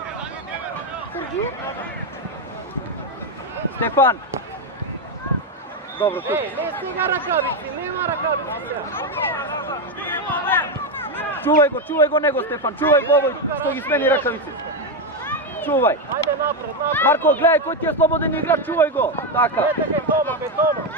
Герги. Стефан! Добро, тук. Еј, не стига ракавици, нема ракавици сега. Чувај го него, Стефан, чувај го овој што ги смени ракавици. Чувај. Ајде напред. Марко, гледај кој ти е слободен играч, чувај го. Така. Ете ке Тома.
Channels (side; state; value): both; normal; correlation 0.08